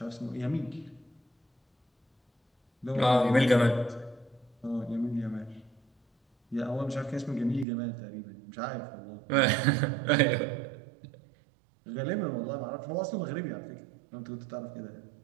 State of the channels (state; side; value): drops out; left; at 7.7 s